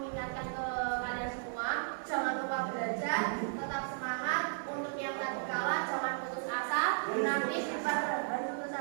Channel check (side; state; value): left; silent; 55 dB below the other